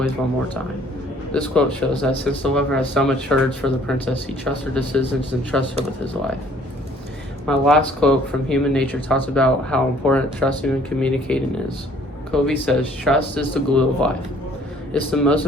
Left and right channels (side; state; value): both; normal; correlation 0.58